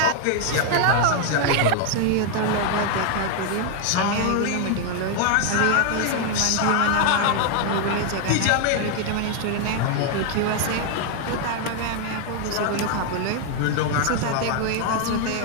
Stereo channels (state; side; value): different; both; correlation 0.00